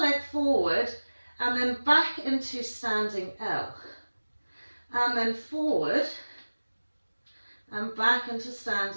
forward and then back into standing L. And then forward and back into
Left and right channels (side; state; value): both; inverted; correlation -1.00